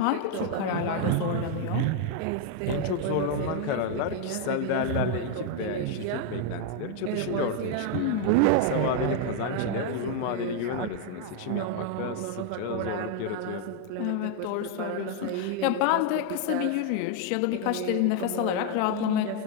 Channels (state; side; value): different; both; correlation 0.00